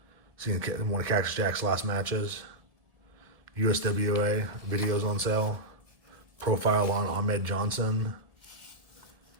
Seeing one of Cactus Jack's last matches. USWA, videos on sale. Profile on Ahmed Johnson.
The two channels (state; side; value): late; left; 1.7 ms